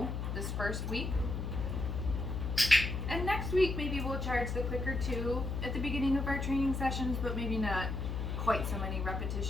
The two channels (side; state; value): left; noise; hum, 3 dB below the sound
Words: this first week. And next week maybe we'll charge the clicker too at the beginning of our training sessions, but maybe not quite so many